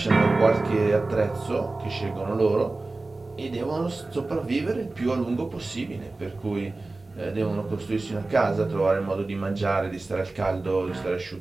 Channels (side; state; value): left; quieter; 3.3 dB